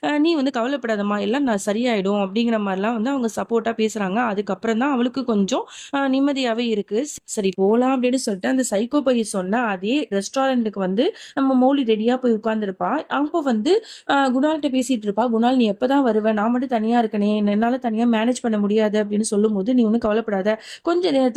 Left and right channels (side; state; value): both; identical; correlation 1.00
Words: நீ வந்து கவலைப்படாதம்மா, எல்லாம் நான் சரியாயிடும் அப்படிங்கிற மாதிரிலாம் வந்து அவங்க சப்போர்ட்டா பேசுறாங்க. அதுக்கப்புறம் தான் அவளுக்கு கொஞ்சம் நிம்மதியாவே இருக்கு. சரி போலாம் அப்படின்னு சொல்லிட்டு அந்த சைக்கோ பையன் சொன்ன அதே ரெஸ்டாரண்ட்டுக்கு வந்து நம்ம மௌலி ரெடியா போய் உட்கார்ந்துருப்பா. அப்போ வந்து குணால்கிட்ட பேசிட்டு இருப்பா. குணால் நீ எப்பதான் வருவ? நான் மட்டும் தனியா இருக்கனே, என்னால தனியா மேனேஜ் பண்ண முடியாது அப்படின்னு சொல்லும்போது, நீ ஒன்றும் கவலைப்படாத, கொஞ்ச